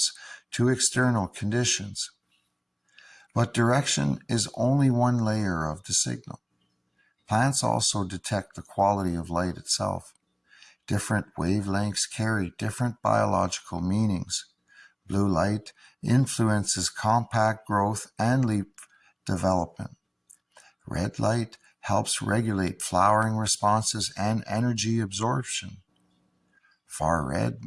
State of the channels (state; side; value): identical; both; correlation 1.00